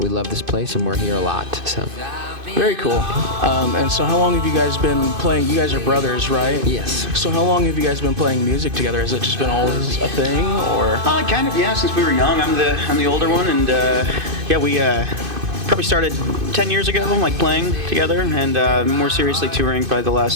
this place and we're here a lot. So. Very cool. And so how long have you guys been playing? You guys are brothers, right? Yes. So how long have you guys been playing music together? Has it just been always a thing, or? Kind of, yeah. Since we were young, I'm the older one, and we probably started 10 years ago, like playing together, and more seriously touring probably the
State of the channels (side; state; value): left; late; 2.5 ms